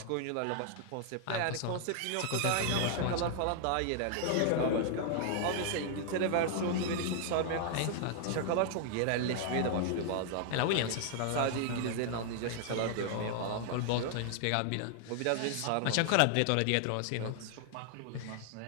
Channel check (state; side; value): different; both; correlation 0.00